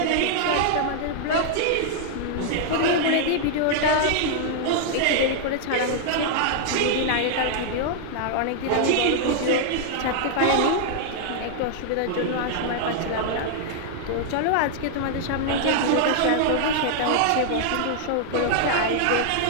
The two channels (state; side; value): different; both; correlation -0.01